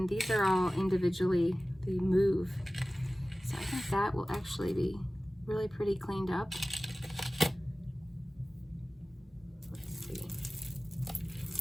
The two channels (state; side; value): normal; both; correlation 0.97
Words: these are all individually, they move. So I think that will actually be really pretty cleaned up. Let's see.